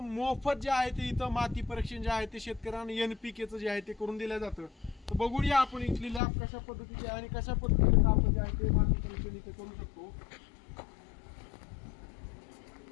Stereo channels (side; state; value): right; drops out; at 6.2 s